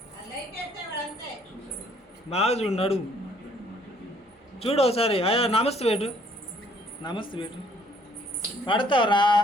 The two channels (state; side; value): normal; both; correlation 0.62